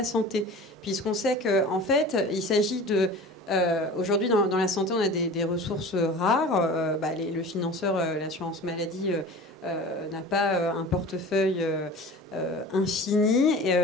santé. Puisqu'on sait qu'en fait, il s'agit de... aujourd'hui, dans la santé, on a des ressources rares. Le financeur, l'assurance maladie... n'a pas un portefeuille infini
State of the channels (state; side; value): normal; both; correlation 0.38